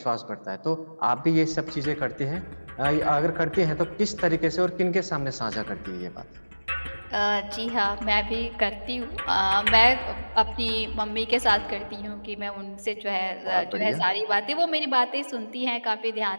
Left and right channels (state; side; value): inverted; both; correlation -1.00